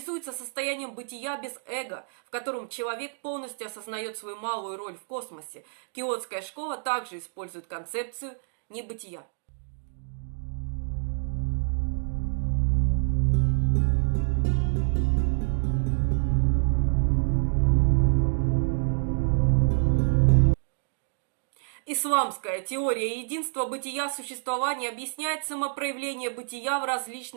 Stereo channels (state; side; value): silent; left; digital silence